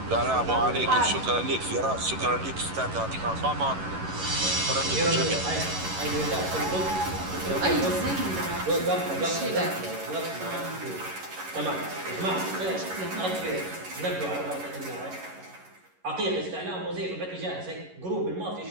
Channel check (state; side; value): late; left; 11 ms